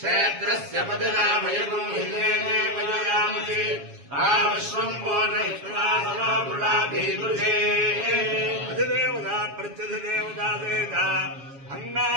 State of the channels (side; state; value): left; late; 7.2 ms